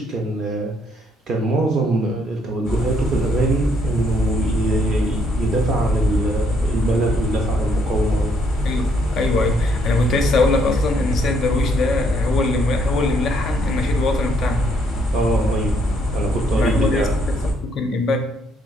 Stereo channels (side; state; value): both; normal; correlation 0.70